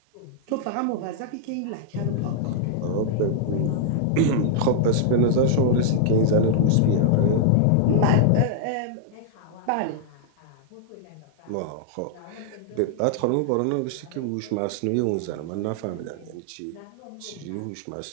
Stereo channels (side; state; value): both; different; correlation -0.01